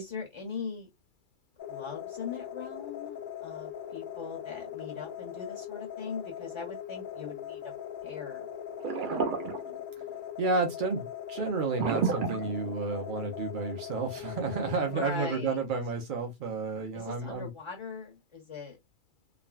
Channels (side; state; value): left; late; 2.3 ms